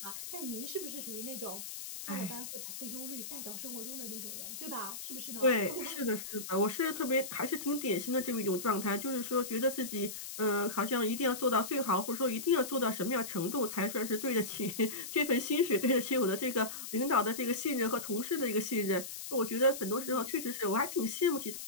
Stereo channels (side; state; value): left; noise; hiss, 8 dB below the sound